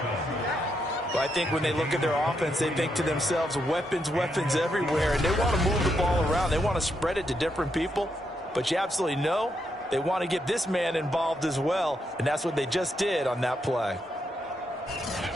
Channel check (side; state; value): both; normal; correlation 0.80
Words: Well, I think when they look at their offense, they think to themselves, weapons, weapons everywhere, and they want to move the ball around. They want to spread it to different people, but you absolutely know they want to get this man involved as well, and that's what they just did on that play.